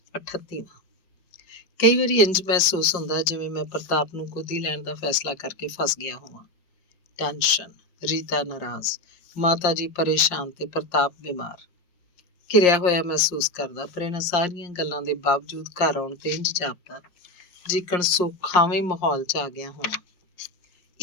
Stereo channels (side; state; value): right; late; 5.6 ms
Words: 38ਵਾਂ। ਕਈ ਵਾਰੀ ਇੰਝ ਮਹਿਸੂਸ ਹੁੰਦਾ ਜਿਵੇਂ ਮੈਂ ਪ੍ਰਤਾਪ ਨੂੰ ਗੋਦੀ ਲੈਣ ਦਾ ਫੈਸਲਾ ਕਰਕੇ ਫਸ ਗਿਆ ਹੋਵਾਂ। ਟੈਨਸ਼ਨ, ਰੀਤਾ ਨਾਰਾਜ਼, ਮਾਤਾ ਜੀ ਪਰੇਸ਼ਾਨ ਤੇ ਪ੍ਰਤਾਪ ਬਿਮਾਰ। ਘਿਰਿਆ ਹੋਇਆ ਮਹਿਸੂਸ ਕਰਦਾ, ਪਰ ਇਹਨਾਂ ਸਾਰੀਆਂ ਗੱਲਾਂ ਦੇ ਬਾਵਜੂਦ ਘਰ ਆਉਣ ਤੇ ਇੰਝ ਜਾਪਦਾ ਜਿਕਣ ਸੁਖਾਵੇਂ ਮਾਹੌਲ 'ਚ ਆ ਗਿਆ ਹੋਵਾਂ।